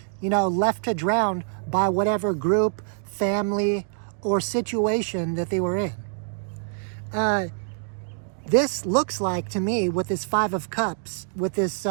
left to drown by whatever group, family, or situation that they were in. This looks like, to me, with this 5 of Cups, with this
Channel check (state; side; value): silent; left; digital silence